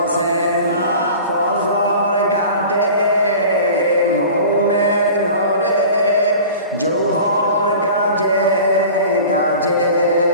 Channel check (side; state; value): both; inverted; correlation -0.40